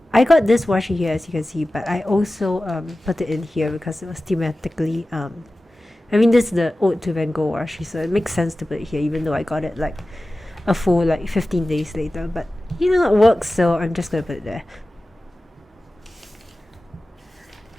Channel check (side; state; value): both; normal; correlation 0.96